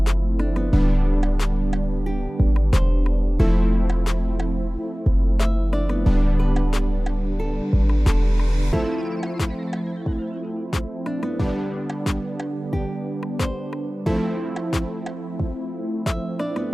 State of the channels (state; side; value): normal; both; correlation 0.98